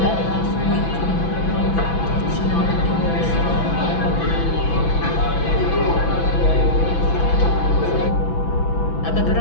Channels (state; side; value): late; right; 6.0 ms